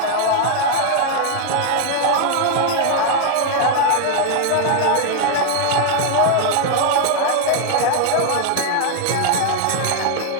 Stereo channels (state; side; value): different; both; correlation 0.00